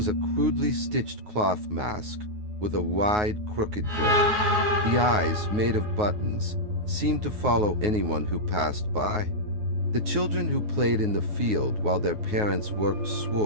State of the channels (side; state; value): left; late; 9.5 ms